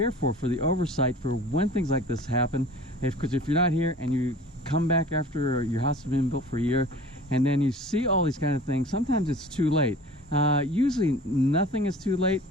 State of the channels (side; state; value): both; normal; correlation 0.43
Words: for the oversight for when things like this happen. Because if you're not here and you come back after your house has been built for a year, and then you see all these kind of things, sometimes it's too late. Usually nothing is too late